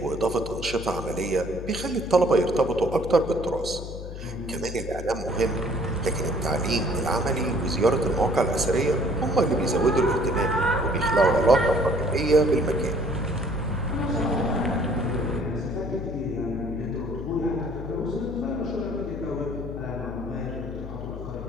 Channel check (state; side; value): noise; left; hum, 9 dB below the sound